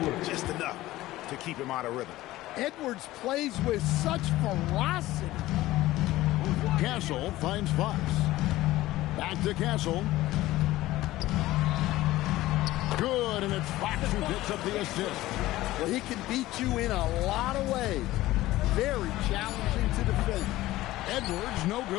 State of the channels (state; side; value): quieter; right; 16.7 dB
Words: just enough to keep him out of rhythm. Edwards plays with such ferocity. Castle finds Fox. Back to Castle. Good, and it's Fox who picks up the assist. Well, he can beat you in a lot of ways. Very challenging to defend. Edwards, no